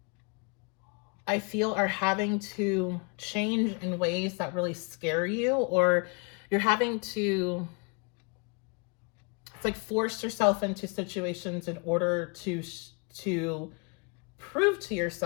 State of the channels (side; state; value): right; quieter; 33.4 dB